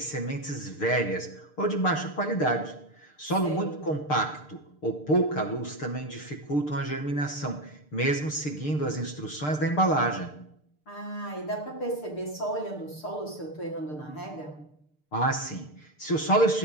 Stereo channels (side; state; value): right; late; 6.7 ms